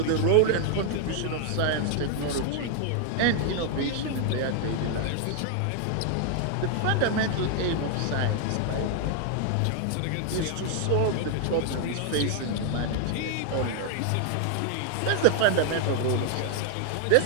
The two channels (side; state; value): both; different; correlation 0.00